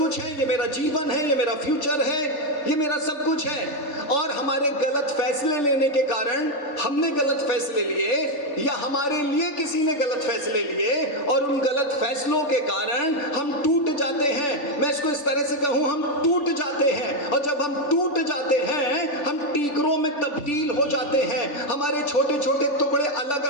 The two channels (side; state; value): right; late; 3.4 ms